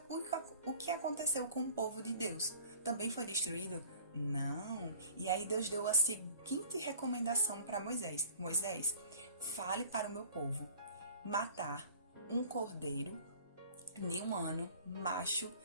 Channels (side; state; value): both; inverted; correlation -0.48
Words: o que aconteceu com o povo de Deus? Também foi destruído? Não. E aí Deus deu a seguinte recomendação para Moisés: Moisés, fale para o meu povo matar um cordeiro de 1 ano, macho,